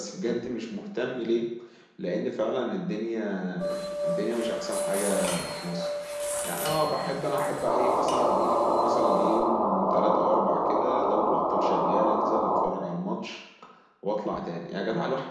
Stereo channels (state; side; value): identical; both; correlation 1.00